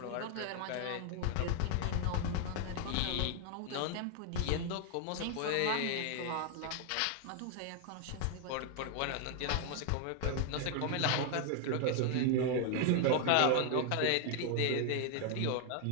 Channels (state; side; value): different; both; correlation 0.00